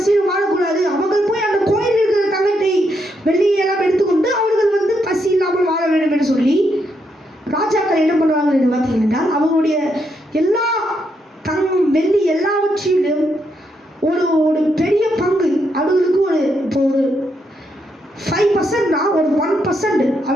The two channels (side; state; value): both; normal; correlation 0.79